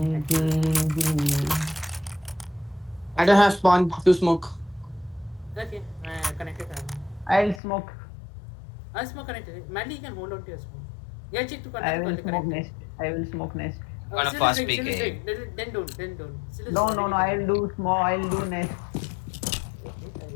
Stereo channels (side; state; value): right; drops out; at 7.6 s